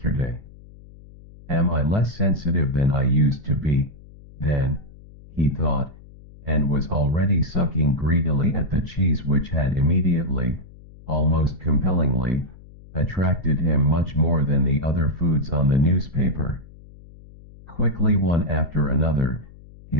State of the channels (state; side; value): noise; left; hum, 21 dB below the sound